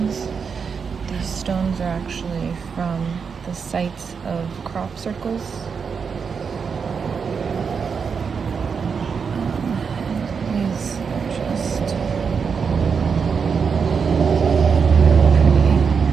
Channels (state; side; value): quieter; left; 6.0 dB